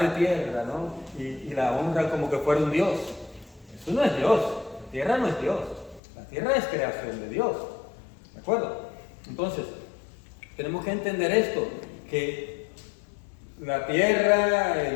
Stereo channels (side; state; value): right; drops out; at 6.0 s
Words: tierra, ¿no? Y la honra como que fuera un Dios. Eso no es Dios. La tierra no es Dios. La tierra es creación de Dios. ¿De acuerdo? Entonces, tenemos que entender esto, que la tierra,